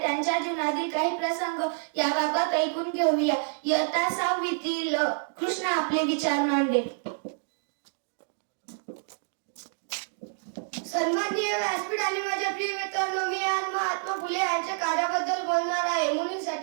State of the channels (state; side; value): silent; left; digital silence